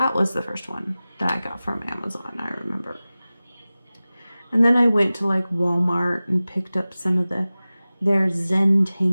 was the first one that I got from Amazon, I remember. And then I went to like Walmart and picked up some of their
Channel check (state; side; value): inverted; both; correlation -0.97